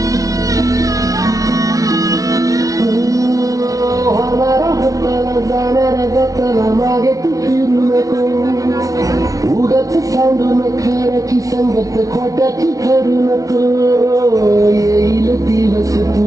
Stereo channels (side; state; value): left; late; 0.17 ms